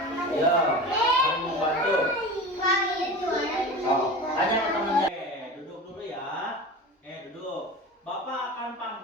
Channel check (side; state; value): both; normal; correlation 0.32